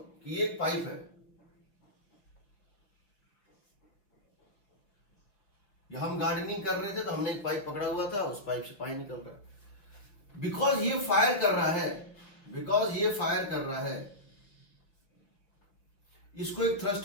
कि ये एक पाइप है, या हम गार्डनिंग कर रहे थे तो हमने एक पाइप पकड़ा हुआ था, उस पाइप से पानी निकल रहा है। बिकॉज ये फायर कर रहा है, बिकॉज ये फायर कर रहा है, इसको एक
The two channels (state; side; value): late; right; 5.1 ms